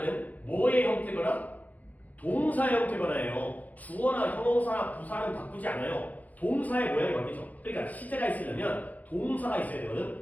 뭐의 형태거나 동사 형태거나예요. 주어나 형용사나 부사는 바꾸지 않아요. 동사의 모양이 바뀌죠. 그러니까 시제가 있으려면 동사가 있어야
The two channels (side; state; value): right; late; 0.075 ms